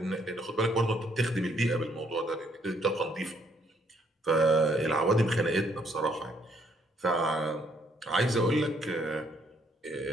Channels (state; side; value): normal; both; correlation 0.69